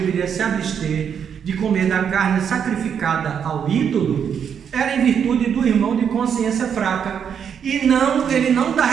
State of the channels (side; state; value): left; quieter; 7.7 dB